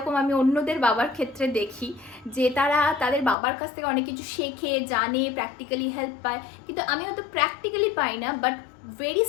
আমি অন্যদের বাবার ক্ষেত্রে দেখি যে তারা তাদের বাবার কাছ থেকে অনেক কিছু শেখে, জানে, প্র্যাকটিক্যালি হেল্প পায়, কিন্তু আমি হয়তো প্র্যাকটিক্যালি পাই না, বাট ভেরি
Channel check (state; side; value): drops out; right; at 3.4 s